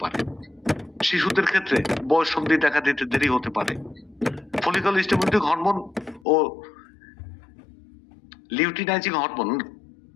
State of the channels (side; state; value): right; drops out; at 6.2 s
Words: পারে। শিশুদের ক্ষেত্রে বয়ঃসন্ধি দেখা দিতে দেরি হতে পারে। ফলিকল স্টিমুলেটিং হরমোন ও লিউটিনাইজিং হরমোন